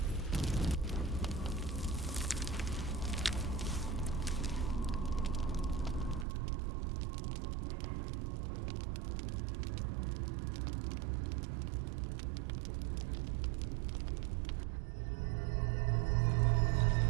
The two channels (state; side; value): drops out; left; at 6.2 s